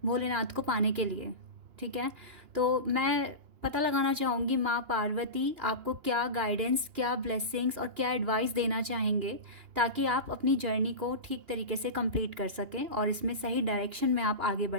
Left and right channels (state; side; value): late; left; 2.9 ms